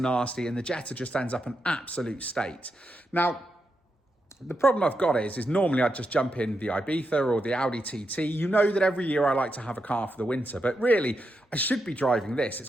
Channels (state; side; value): normal; both; correlation 0.85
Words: nasty, and the Jetta just ends up an absolute state. Now, the problem I've got is normally I'd just jump in the Ibiza or the Audi TT. You know that every year I like to have a car for the winter, but really I should be driving this. It's